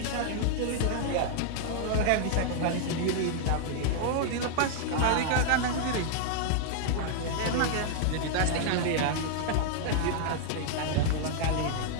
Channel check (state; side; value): different; both; correlation -0.01